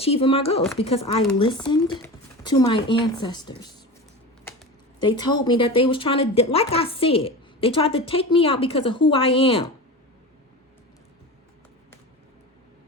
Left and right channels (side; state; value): both; normal; correlation 0.29